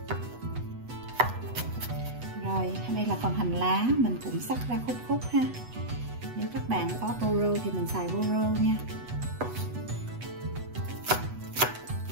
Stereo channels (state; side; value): late; left; 8.1 ms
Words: Rồi đây là phần hành lá, mình cũng xắt ra khúc ha. Nếu các bạn có bô rô thì mình xài bô rô nha.